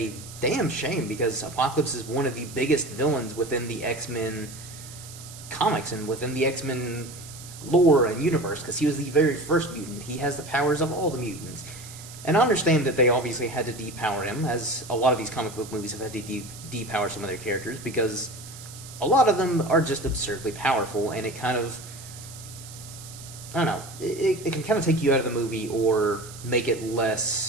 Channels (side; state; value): right; noise; hiss, 15 dB below the sound